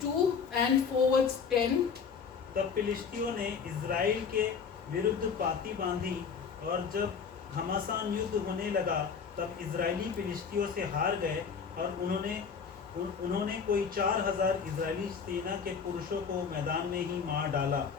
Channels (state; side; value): quieter; right; 6.2 dB